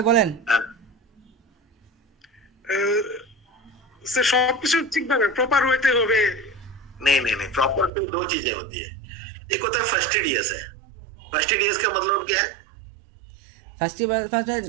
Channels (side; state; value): left; drops out; at 7.9 s